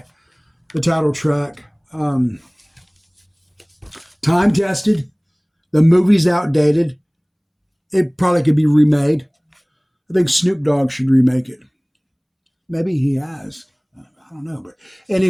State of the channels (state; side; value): identical; both; correlation 1.00